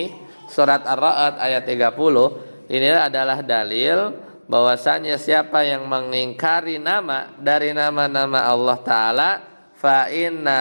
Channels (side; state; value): both; inverted; correlation -1.00